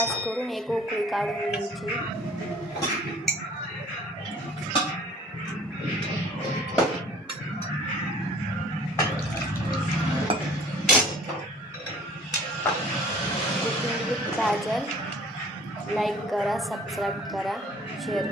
करून एक उकळी काढून घ्यायची. गाजर लाईक करा, सबस्क्राईब करा, शेअर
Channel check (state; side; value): normal; both; correlation 0.51